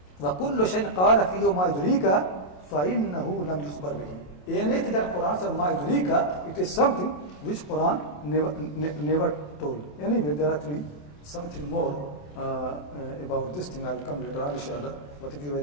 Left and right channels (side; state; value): right; late; 27 ms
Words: وكل شيء قال فيه ما يدريك فإنه لم يخبر به. Anything that Quran says ما يدريك, it is something which Quran never told. Anyway, there are actually something more about this thing. I'll come later on, inshallah. But if you